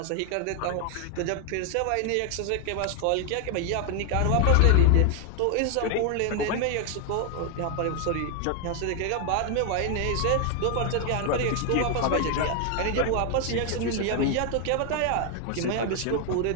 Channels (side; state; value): both; different; correlation 0.00